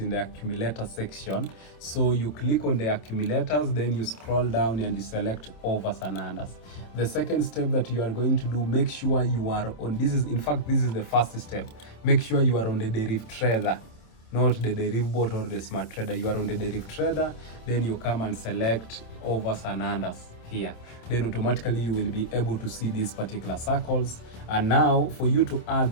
the accumulator section. So you click on the accumulators, then you scroll down and you select overs and unders. The second step that you are going to do, make sure you are on, this is the first step, make sure you are on the Deriv Trader, not the Deriv bot or the smart trader. You are on the Deriv Trader, then you come and select overs and unders here. Then automatically you will be able to see these particular circles. And now for you to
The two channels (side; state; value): right; late; 27 ms